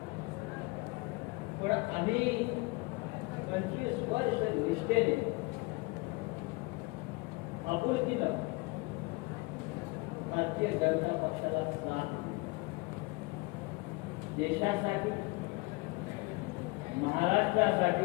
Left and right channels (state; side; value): quieter; right; 25.0 dB